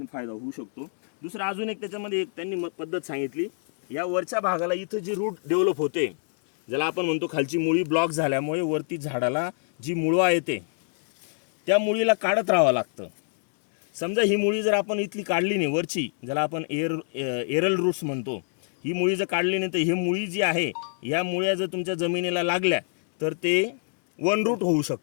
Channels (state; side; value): silent; right; digital silence